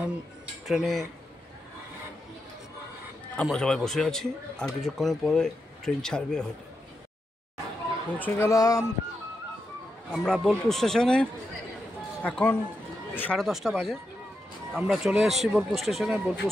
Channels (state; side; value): normal; both; correlation 0.86